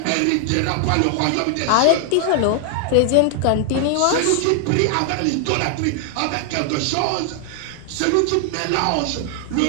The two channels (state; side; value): different; both; correlation 0.00